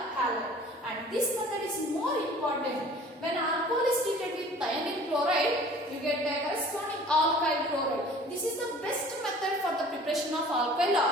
halide. And this method is more important. When alcohol is treated with thionyl chloride, you get a corresponding alkyl chloride. This is the best method for the preparation of alkyl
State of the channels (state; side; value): normal; both; correlation 0.48